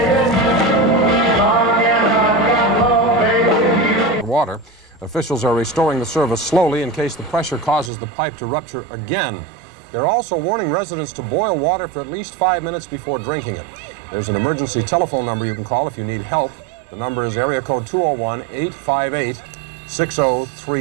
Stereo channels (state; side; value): drops out; left; at 7.9 s